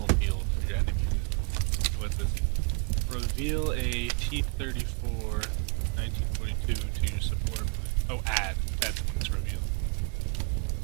for your enemies is. What's this? Reveal a T-34 1942 to your support. Oh, add. That's when it's revealed.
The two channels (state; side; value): quieter; left; 34.7 dB